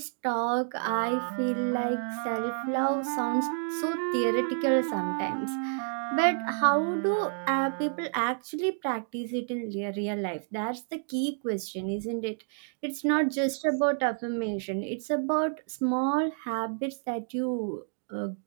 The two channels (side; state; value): left; silent; digital silence